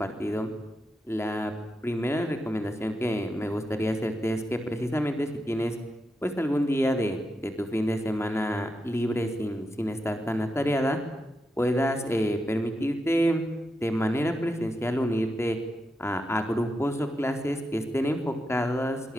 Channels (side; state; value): both; normal; correlation 0.86